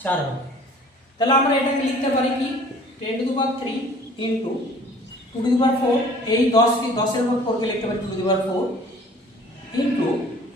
4 হবে, তাহলে আমরা এটাকে লিখতে পারি কি, 10^3 × 2^4, এই 10-এর উপর 4কে লিখতে পারি 2^4 ×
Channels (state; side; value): normal; both; correlation 0.50